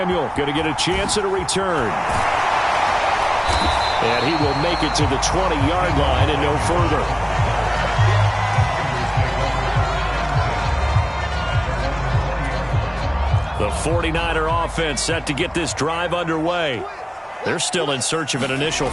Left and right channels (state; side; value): identical; both; correlation 1.00